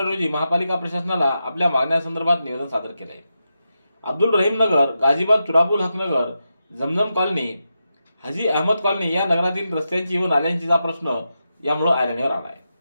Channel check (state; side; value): inverted; both; correlation -0.88